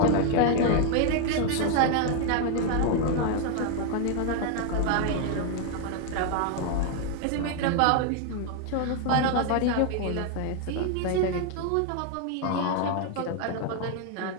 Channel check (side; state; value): both; different; correlation 0.00